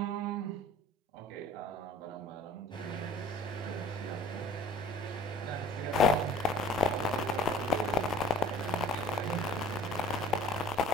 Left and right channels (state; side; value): normal; both; correlation 0.48